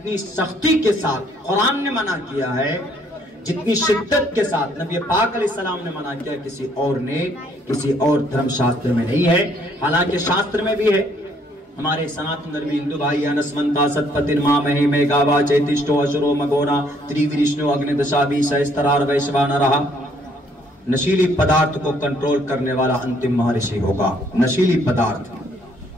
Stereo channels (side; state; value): both; normal; correlation 0.66